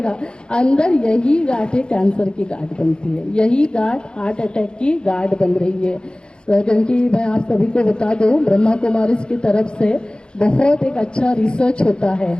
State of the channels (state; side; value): late; right; 0.050 ms